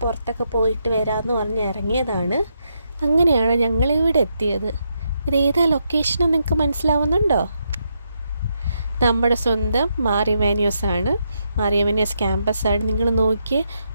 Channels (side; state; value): both; inverted; correlation -0.81